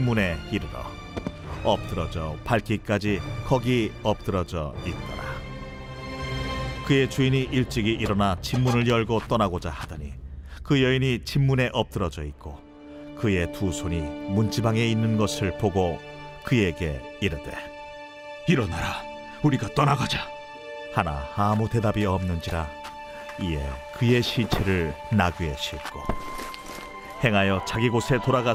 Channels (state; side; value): identical; both; correlation 1.00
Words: 이르러 엎드러져 밟기까지 거기 엎드러져 있더라. 그의 주인이 일찍이 일어나 집문을 열고 떠나고자 하더니 그 여인이 집문에 엎드러져 있고 그의 두 손이 문지방에 있는 것을 보고 그에게 이르되 일어나라, 우리가 떠나가자. 하나 아무 대답이 없는지라. 이에 그의 시체를 나귀에 싣고 행하여 자기 곳에